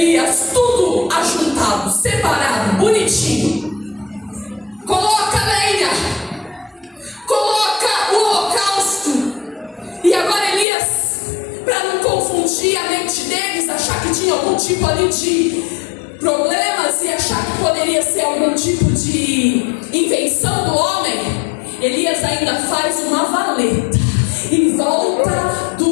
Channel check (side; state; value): right; drops out; at 10.7 s